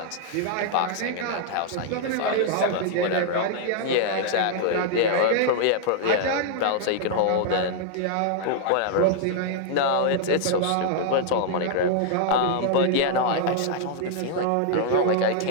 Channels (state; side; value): different; both; correlation -0.01